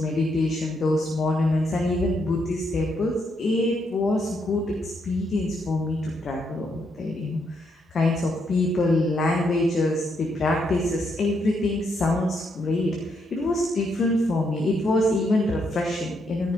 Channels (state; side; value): normal; both; correlation 0.77